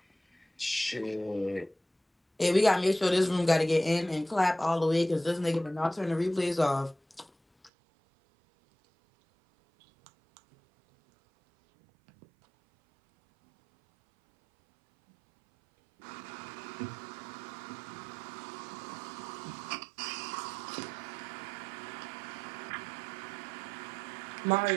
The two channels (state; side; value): drops out; left; at 7.7 s